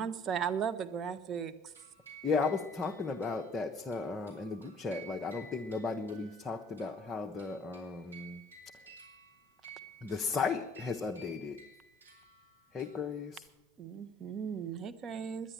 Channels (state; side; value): normal; both; correlation 0.56